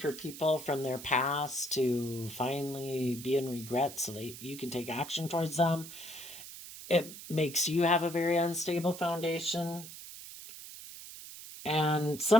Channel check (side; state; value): right; noise; hiss, 13 dB below the sound